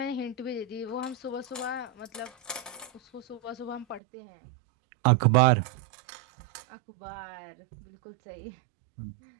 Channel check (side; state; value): left; drops out; at 4.0 s